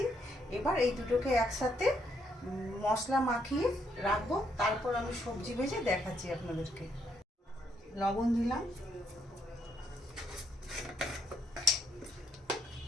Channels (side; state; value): both; normal; correlation 0.74